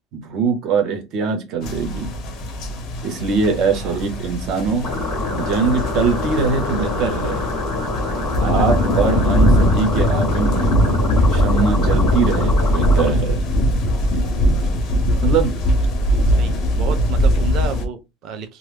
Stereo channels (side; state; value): both; normal; correlation 0.51